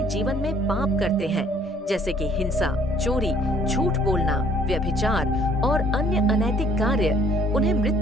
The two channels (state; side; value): normal; both; correlation 0.60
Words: जीवन में पाप करते हैं, जैसे कि हिंसा, चोरी, झूठ बोलना, व्यभिचार और अन्य अनैतिक कार्य, उन्हें